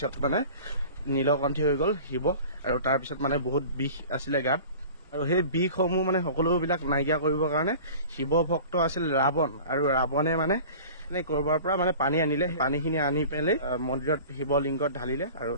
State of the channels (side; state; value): both; inverted; correlation -0.41